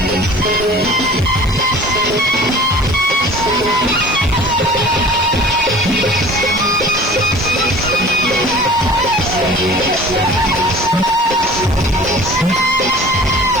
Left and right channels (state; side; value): noise; left; hiss, 26 dB below the sound